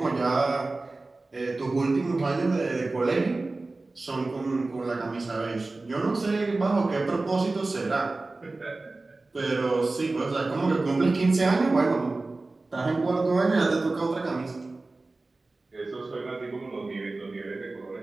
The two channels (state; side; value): quieter; left; 3.3 dB